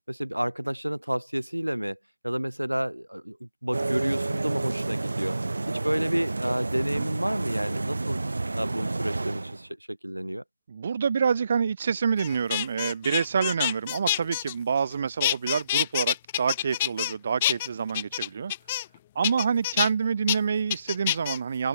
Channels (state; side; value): inverted; both; correlation -0.80